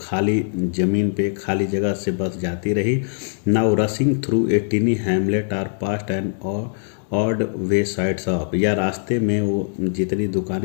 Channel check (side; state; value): right; silent; digital silence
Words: खाली ज़मीन पे खाली जगह से बस जाती रही। Now rushing through a tiny hamlet or past and odd way side shop, या रास्ते में वो जितनी